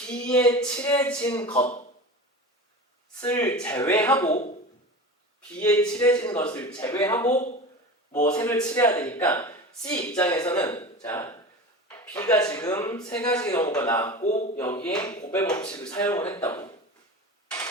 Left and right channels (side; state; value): both; normal; correlation 0.31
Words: 칠해진 것을 제외하고, B에 칠해진 것을 제외하고 뭐 색을 칠해야 되니까 C 입장에서는, 자, B가 지금 3가지 경우가 나왔고 여기에 곱의 법칙을 사용을 했다고.